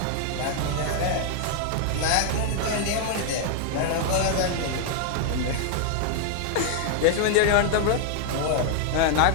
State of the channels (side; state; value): both; different; correlation 0.00